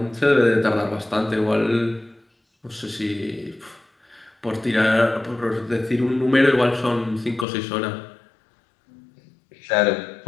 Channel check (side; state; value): right; drops out; at 7.5 s